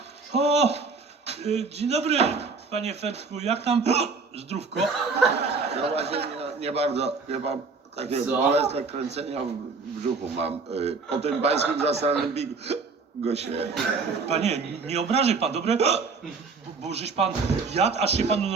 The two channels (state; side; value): quieter; left; 4.5 dB